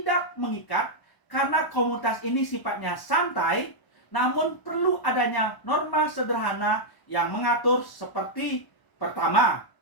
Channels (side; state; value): right; late; 1.0 ms